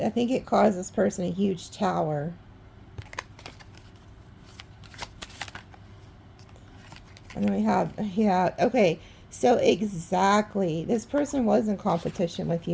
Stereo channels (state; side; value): identical; both; correlation 1.00